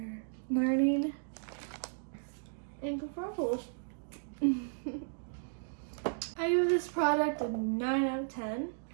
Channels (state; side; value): silent; left; digital silence